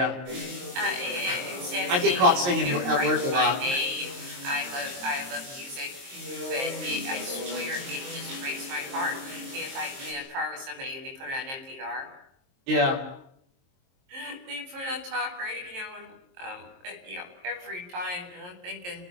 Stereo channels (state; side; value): late; left; 22 ms